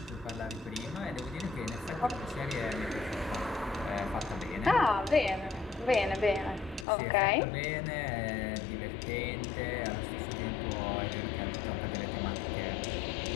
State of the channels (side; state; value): right; drops out; at 6.9 s